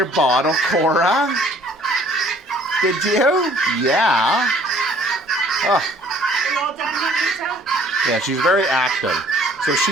bottle, Cora? Did you? Yeah. Oh. Are you all done, Juanita? Yeah, she's very active. So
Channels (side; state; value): both; normal; correlation 0.56